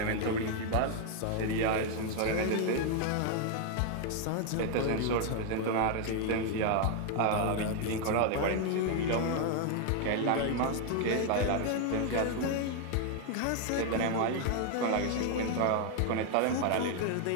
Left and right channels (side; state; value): both; different; correlation 0.00